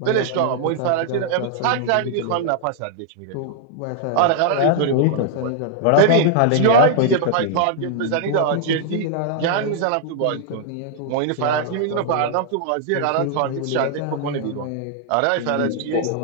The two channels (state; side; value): different; both; correlation -0.01